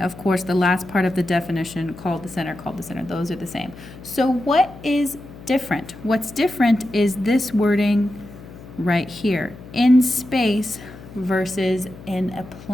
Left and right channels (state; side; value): noise; left; hum, 17 dB below the sound